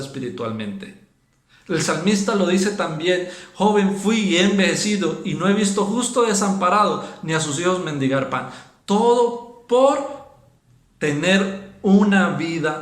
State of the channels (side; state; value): both; identical; correlation 1.00